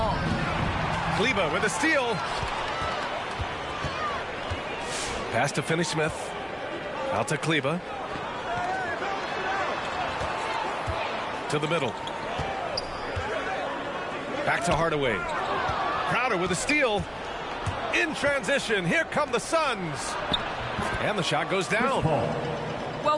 Kleba with a steal. Pass to Finney-Smith. Out to Kleba. To the middle. Back to Hardaway. Crowder with a steal. In transition, here come the Suns. And the shot goes down. Well,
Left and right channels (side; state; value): both; identical; correlation 1.00